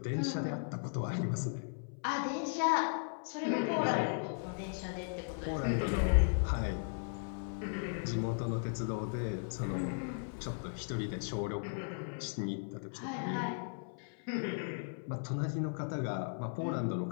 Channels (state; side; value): silent; right; 53 dB below the other